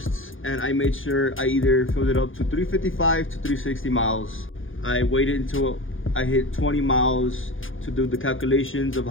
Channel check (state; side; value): late; right; 0.58 ms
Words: and I made sure I either filled it up to 355 to 360 miles. I waited until I hit 20 miles to do the calculations of